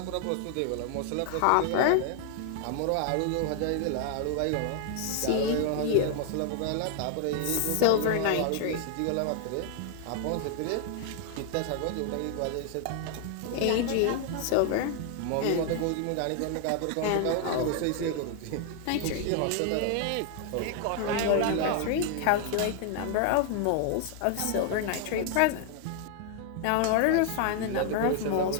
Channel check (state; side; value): different; both; correlation 0.00